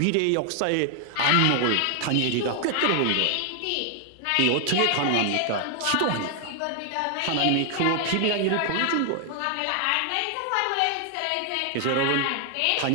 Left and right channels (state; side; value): different; both; correlation 0.00